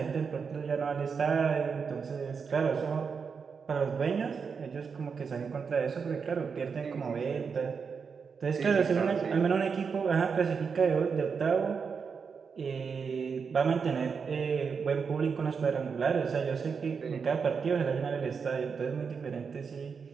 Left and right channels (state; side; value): quieter; left; 5.8 dB